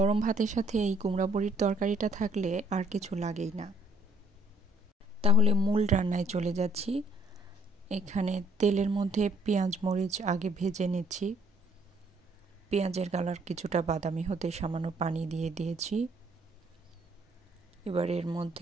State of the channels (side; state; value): both; normal; correlation 0.63